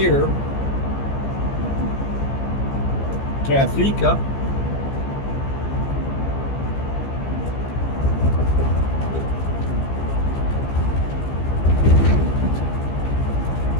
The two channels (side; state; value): right; late; 15 ms